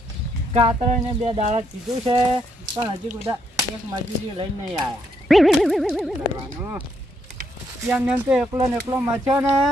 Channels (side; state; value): both; normal; correlation 0.75